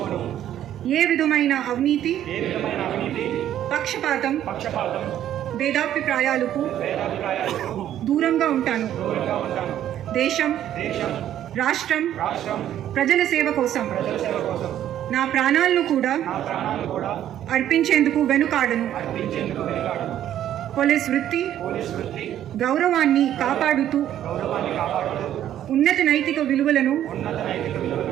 ఏ విధమైన అవినీతి, పక్షపాతం, భేదాభిప్రాయాలకు దూరంగా ఉంటాను. దేశం, రాష్ట్రం, ప్రజల సేవ కోసం నా ప్రాణాలను కూడా అర్పించేందుకు వెనుకాడను. పోలీస్ వృత్తి గౌరవాన్ని కాపాడుతూ ఉన్నత నైతిక విలువలను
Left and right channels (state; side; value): quieter; left; 11.4 dB